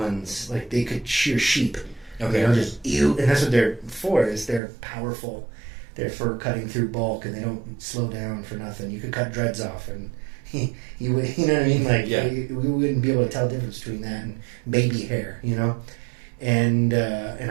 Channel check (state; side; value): drops out; left; at 4.6 s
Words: Like they could shear sheep. Okay. And that's what they're for. Is they're powerful. They're for cutting through bulk, and they don't slow down for nothing. You could cut dreads off, and you know what I mean. Like we wouldn't be able to tell the difference between that and baby hair. And